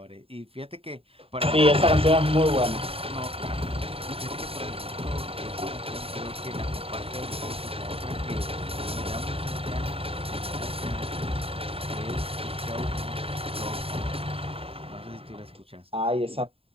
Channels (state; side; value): late; left; 0.27 ms